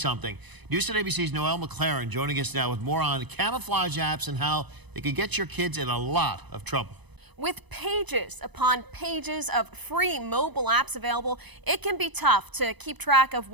News at ABC's Noelle McLaren joining us now with more on camouflage apps and how they could get your kids in a lot of trouble. With pages upon pages of free mobile apps available, it can be tough to keep track of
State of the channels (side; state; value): left; late; 1.0 ms